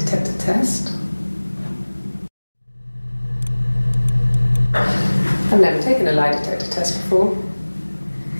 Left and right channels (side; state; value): both; inverted; correlation -1.00